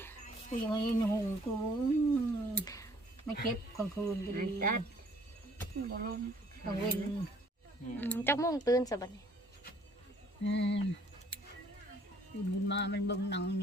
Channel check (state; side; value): normal; both; correlation 0.60